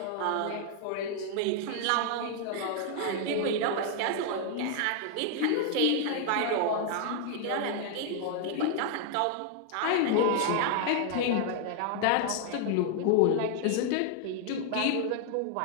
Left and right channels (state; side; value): different; both; correlation 0.00